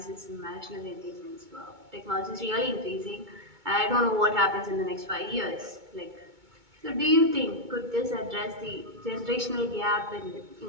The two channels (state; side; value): late; left; 2.2 ms